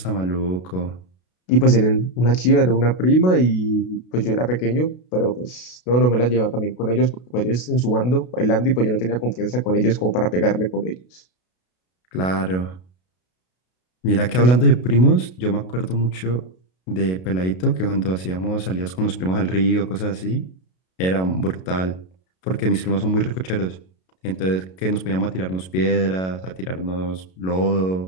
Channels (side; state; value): right; late; 32 ms